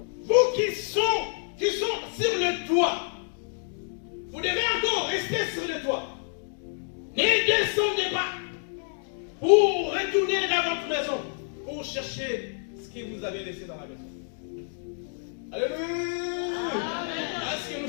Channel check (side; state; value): right; silent; 59 dB below the other